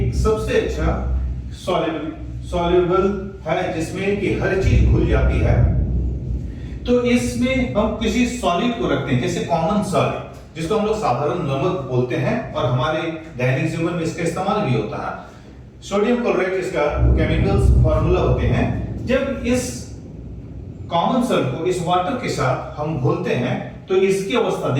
सबसे अच्छा सॉल्युबल है जिसमें कि हर चीज घुल जाती है। तो इसमें हम किसी सॉलिड को रखते हैं, जैसे कॉमन सॉलिड जिसको हम लोग साधारण नमक बोलते हैं और हमारे दैनिक जीवन में इसका इस्तेमाल भी होता है। सोडियम क्लोराइड इसका केमिकल्स फार्मूला होते हैं। जब इस कॉमन सॉलिड को इस वाटर के साथ हम घोलते हैं तो इसकी अवस्था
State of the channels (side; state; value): both; identical; correlation 1.00